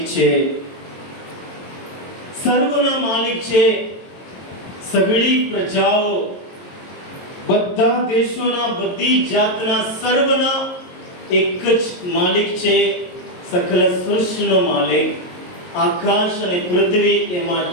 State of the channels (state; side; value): late; right; 22 ms